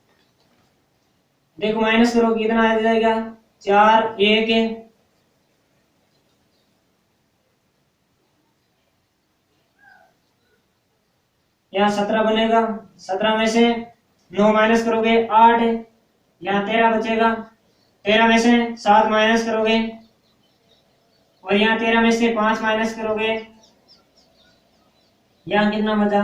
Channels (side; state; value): both; identical; correlation 1.00